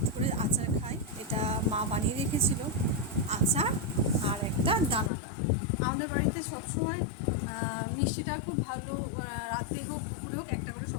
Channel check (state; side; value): drops out; right; at 5.1 s